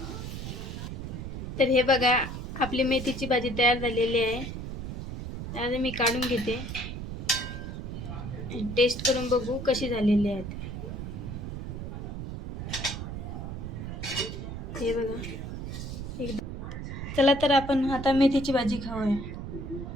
तर हे बघा, आपली मेथीची भाजी तयार झालेली आहे। आता मी काढून घेते, टेस्ट करून बघू कशी झालेली आहे। हे बघा, चला तर आपण आता मेथीची भाजी खाऊया।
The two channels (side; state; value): right; noise; rumble, 7 dB below the sound